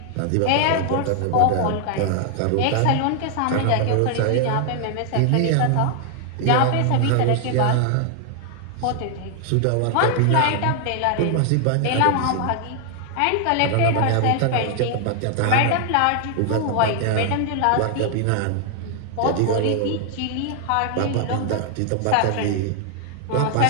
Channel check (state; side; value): different; both; correlation 0.00